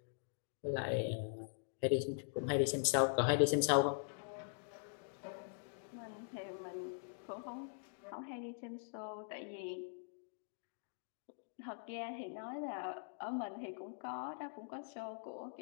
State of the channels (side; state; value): right; silent; digital silence